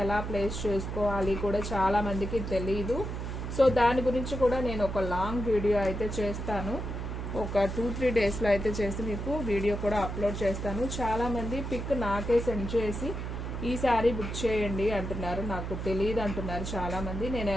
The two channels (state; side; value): noise; right; hum, 5 dB below the sound